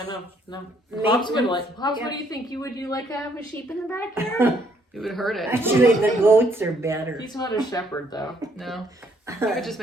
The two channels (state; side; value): normal; both; correlation 0.68